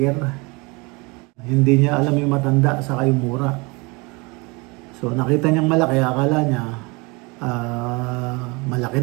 Hindi niya alam yung matanda saka yung mura. So nakita niyang malaki, akala niya malaki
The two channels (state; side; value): quieter; left; 27.4 dB